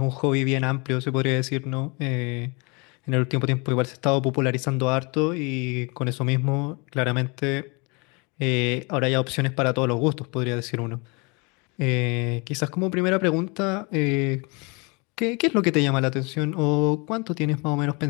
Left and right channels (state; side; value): quieter; right; 29.9 dB